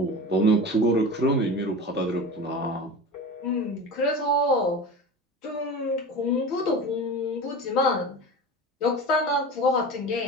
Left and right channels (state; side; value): normal; both; correlation 0.31